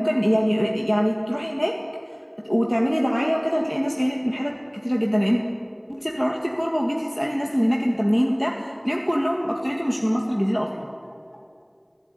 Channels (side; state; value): both; identical; correlation 1.00